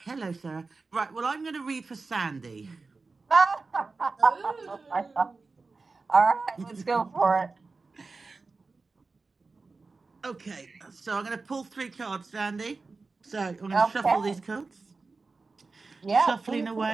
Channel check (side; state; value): left; quieter; 4.0 dB